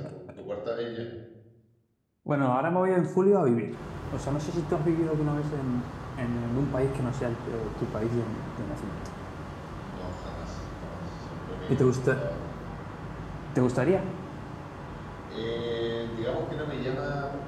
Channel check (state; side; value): identical; both; correlation 1.00